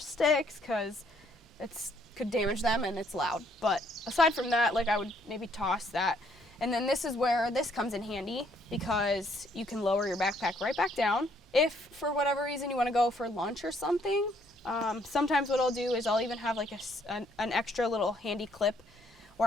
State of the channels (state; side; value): normal; both; correlation 0.67